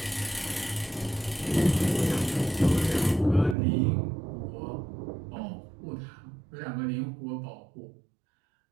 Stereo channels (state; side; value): drops out; left; at 3.6 s